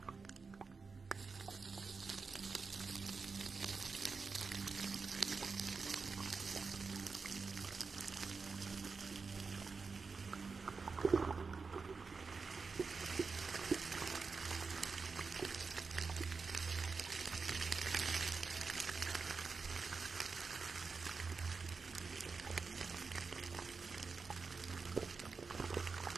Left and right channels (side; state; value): left; quieter; 4.7 dB